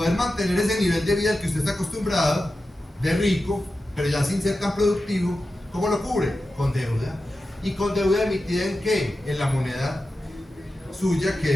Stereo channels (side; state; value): both; normal; correlation 0.92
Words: mantener ese nivel de vida al que usted está acostumbrado, de rico, pero ya sin ser tan productivo, ¿cómo lo cubre? Con deuda. ¿Y con deuda emitida en qué? En la moneda suya,